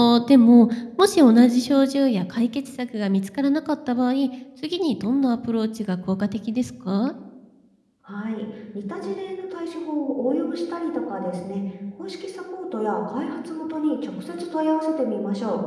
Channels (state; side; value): identical; both; correlation 1.00